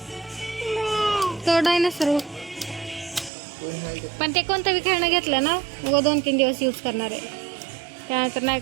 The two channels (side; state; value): left; drops out; at 3.3 s